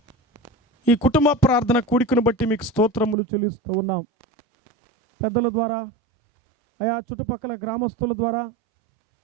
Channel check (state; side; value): drops out; left; at 3.2 s